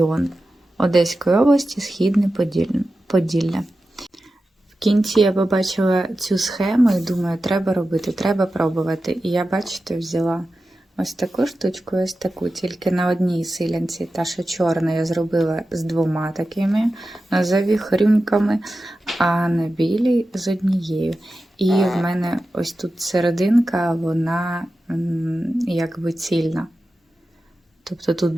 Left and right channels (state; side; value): normal; both; correlation 0.93